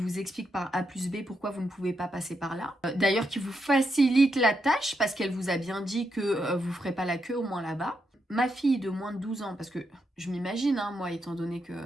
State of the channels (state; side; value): normal; both; correlation 0.82